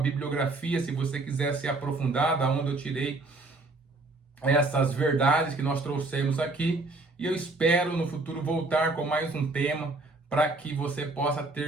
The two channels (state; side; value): quieter; left; 3.1 dB